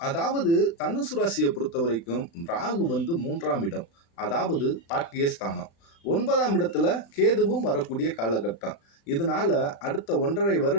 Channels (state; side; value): late; right; 36 ms